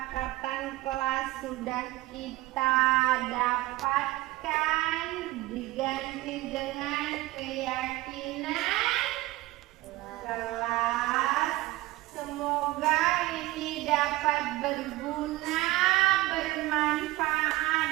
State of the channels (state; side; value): quieter; left; 18.6 dB